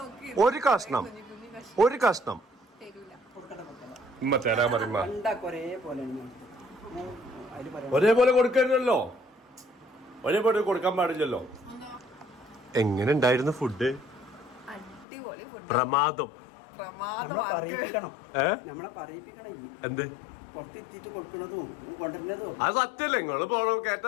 ഒരു കഷ്ണം ഉമ്മ തരാൻ പറയുമ്പോ ഒരേപോലെ കൊടുക്കരുതല്ലോ. ഒരേപോലെ കൊടുക്കാൻ പാടില്ലല്ലോ. എങ്ങനെ ഉണ്ടായിരുന്നു ഫുഡ്? പ്രമാദം. എന്ത് പുറത്തെത്തിയിട്ട് കൊടുക്കണതും കൊണ്ടുവരുന്നതും അത് സത്യല്ലേ നിങ്ങള് പോണോ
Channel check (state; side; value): drops out; right; at 15.1 s